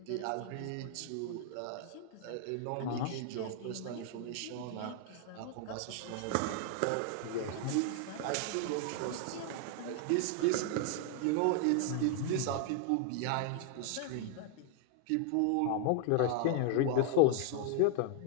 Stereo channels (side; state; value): both; different; correlation 0.00